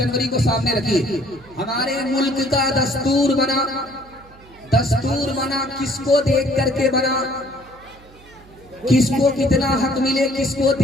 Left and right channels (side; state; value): right; noise; hum, 24 dB below the sound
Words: को सामने रखिए। हमारे मुल्क का दस्तूर बना, दस्तूर बना किसको देख करके बना, किसको कितना हक मिले किसको